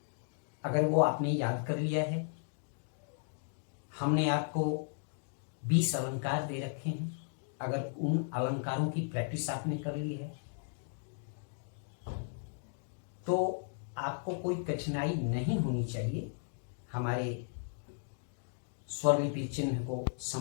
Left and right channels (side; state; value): right; silent; digital silence